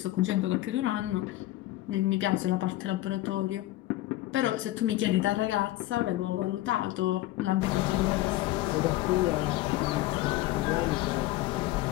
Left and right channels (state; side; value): quieter; right; 16.4 dB